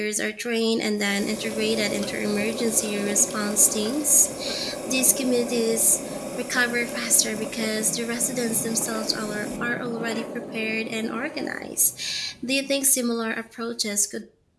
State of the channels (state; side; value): identical; both; correlation 1.00